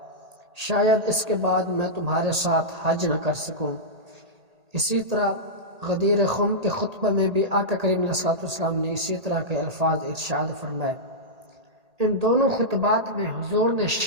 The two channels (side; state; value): left; late; 1.8 ms